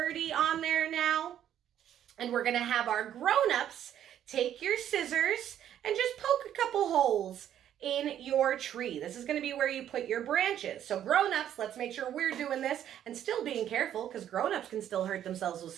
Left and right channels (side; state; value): left; quieter; 10.6 dB